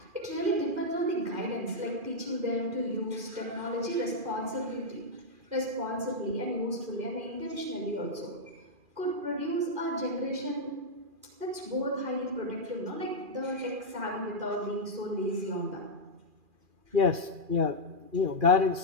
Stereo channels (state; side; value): late; left; 2.4 ms